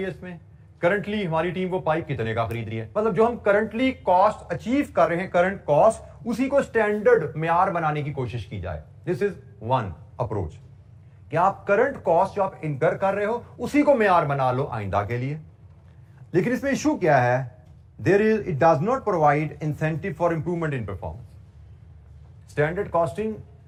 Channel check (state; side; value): identical; both; correlation 1.00